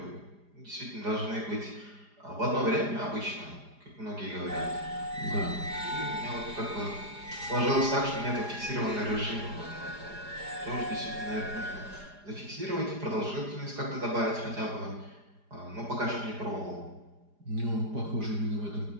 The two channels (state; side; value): late; left; 4.9 ms